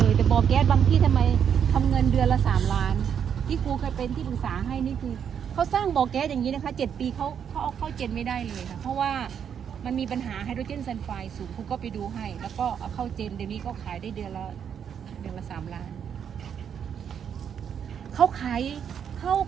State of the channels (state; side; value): quieter; left; 8.1 dB